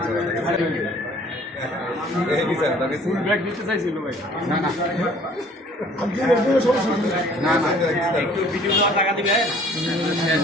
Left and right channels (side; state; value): both; normal; correlation 0.54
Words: ফুল ব্যাগ দিতে চাইছিল ভাই। না না না না একটু ভিডিও টাকা দিবে